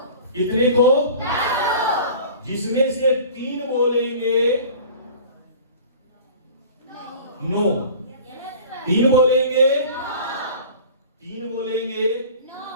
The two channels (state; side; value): inverted; both; correlation -0.42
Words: कितने को, जिसमें से 3 बोलेंगे नो, 3 बोलेंगे, 3 बोलेंगे